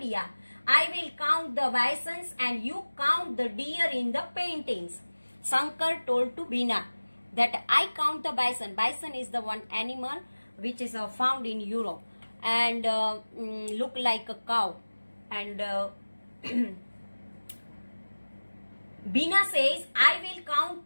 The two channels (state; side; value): inverted; both; correlation -1.00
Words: I will count the bisons and you count the deer in the paintings. Sankar told to Bina that I count the bison. Bison is the one animal which is found in Europe and look like a cow. And Bina says, I will count